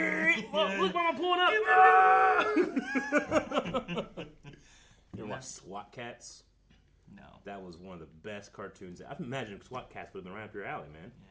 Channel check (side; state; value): both; identical; correlation 1.00